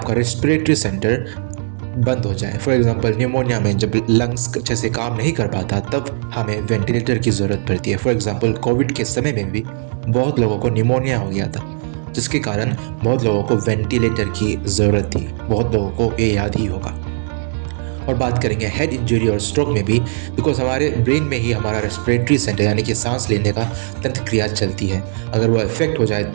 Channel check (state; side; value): silent; left; 67 dB below the other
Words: रेस्पिरेटरी सेंटर बंद हो जाए। फॉर एग्जांपल न्यूमोनिया में जब लंग्स अच्छे से काम नहीं कर पाता तब हमें वेंटिलेटर की ज़रूरत पड़ती है। फॉर एग्जांपल कोविड के समय में भी बहुत लोगों को न्यूमोनिया हो गया था, जिसके कारण बहुत लोगों को वेंटिलेटर की ज़रूरत थी। बहुत लोगों को ये याद ही होगा। और बात करेंगे हेड इंजरी और स्ट्रोक में भी, बिकॉज हमारे ब्रेन में ही हमारा रेस्पिरेटरी सेंटर यानी कि सांस लेने का तंत्र क्रिया चलती है। अगर वो इफेक्ट हो जाए